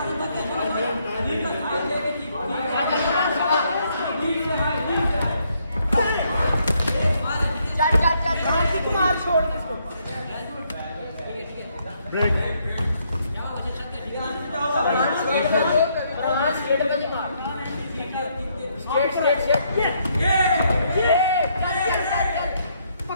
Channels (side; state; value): both; inverted; correlation -0.72